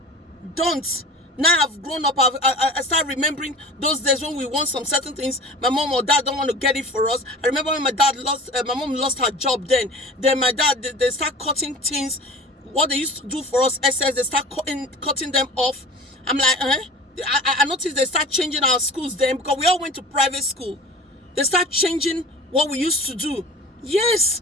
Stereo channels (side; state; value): both; normal; correlation 0.39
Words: Now I've grown up, I start remembering those days when we want some certain things. My mom or dad don't want to get it for us. I remember when my mom lost her job then. Then my dad, they start cutting things. What they used to do for us, SS, they start cutting them off. I'm like, I noticed they start changing our schools then, because we all went to private school. They start changing what we used to do. Yes,